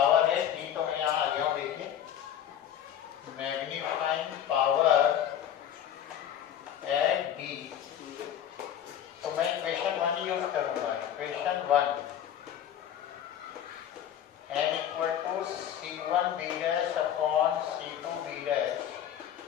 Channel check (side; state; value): right; quieter; 10.1 dB